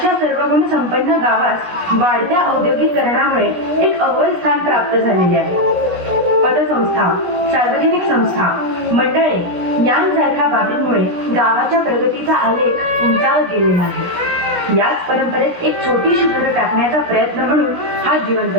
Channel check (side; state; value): left; late; 16 ms